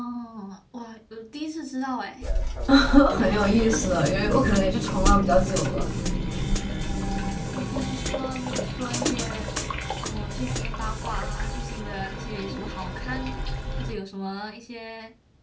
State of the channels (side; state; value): both; identical; correlation 1.00